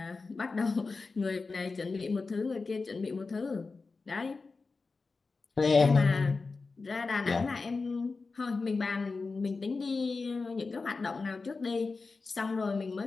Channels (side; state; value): right; quieter; 4.1 dB